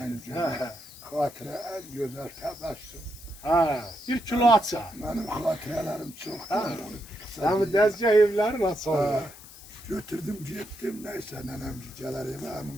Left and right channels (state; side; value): noise; left; hiss, 18 dB below the sound